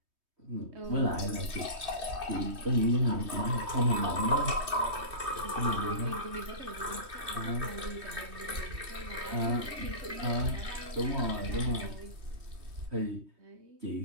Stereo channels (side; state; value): left; late; 3.2 ms